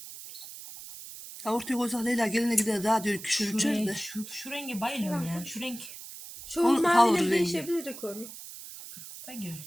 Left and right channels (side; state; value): right; noise; hiss, 13 dB below the sound